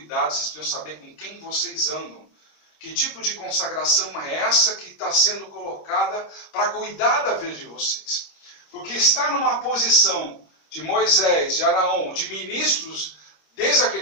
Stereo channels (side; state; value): right; late; 26 ms